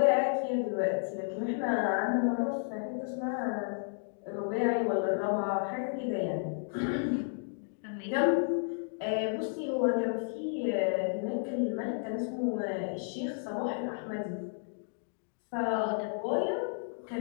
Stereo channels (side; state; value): right; silent; digital silence